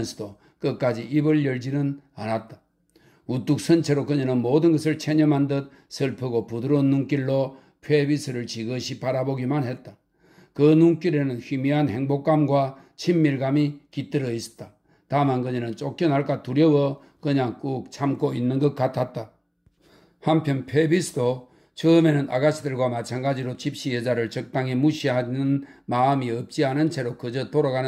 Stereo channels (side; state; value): both; identical; correlation 1.00